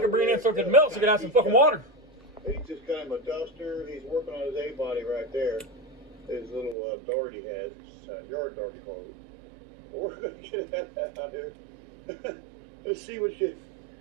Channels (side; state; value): left; drops out; at 6.8 s